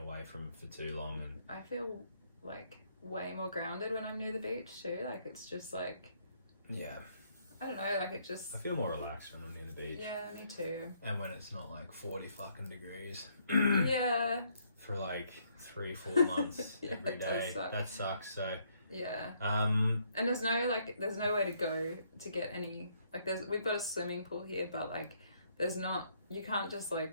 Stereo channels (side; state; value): both; inverted; correlation -0.70